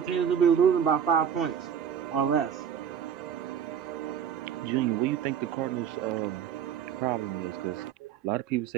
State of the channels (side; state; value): left; quieter; 8.4 dB